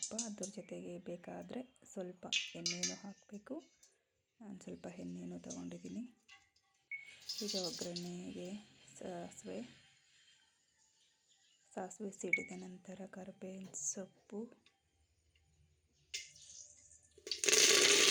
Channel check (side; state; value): both; identical; correlation 1.00